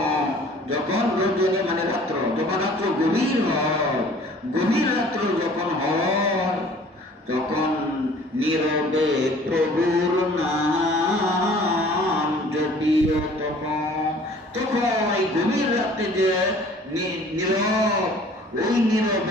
যখন রজনী মানে রাত্র, যখন রাত্র গভীর হয়, গভীর রাত্র যখন হয় তখন নীরবে প্রভুর নাম জপিও তখন। তখন এই গভীর রাত্রে যে নীরব, ওই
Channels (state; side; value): normal; both; correlation 0.51